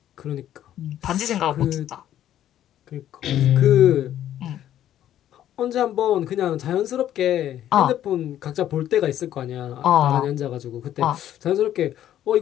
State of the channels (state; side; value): quieter; right; 11.6 dB